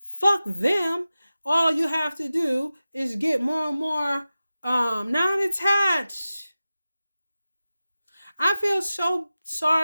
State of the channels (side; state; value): both; inverted; correlation -0.94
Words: Fuck them. All you have to do is get more and more non-attached. I feel so